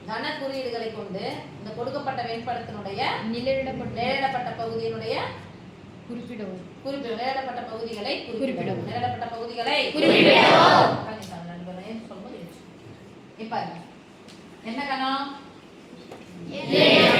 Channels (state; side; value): identical; both; correlation 1.00